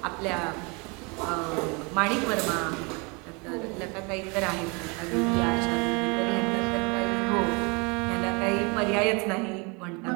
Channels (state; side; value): quieter; left; 30.3 dB